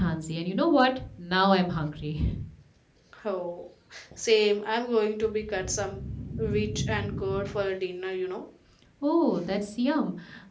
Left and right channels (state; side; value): identical; both; correlation 1.00